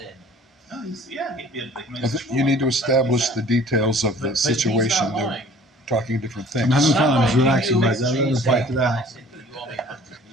No, You need to establish the details of the situation. They're talking different things. I'm having fun. I'm relaxing, guys. I'm going to fight it out.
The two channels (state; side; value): normal; both; correlation 0.51